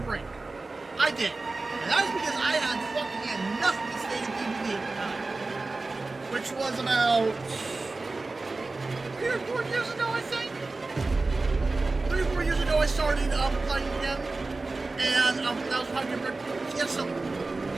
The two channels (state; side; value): quieter; left; 3.5 dB